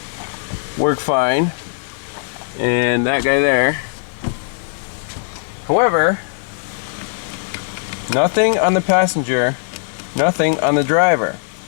work fine, and that guy there. However, nothing on the passenger, nothing on the driver.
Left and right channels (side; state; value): right; silent; digital silence